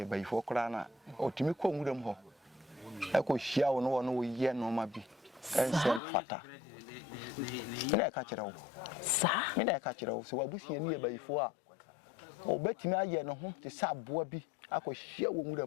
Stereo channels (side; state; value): right; drops out; at 6.0 s